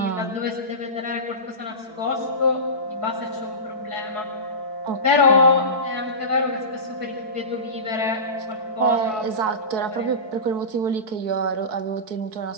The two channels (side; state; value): left; late; 4.6 ms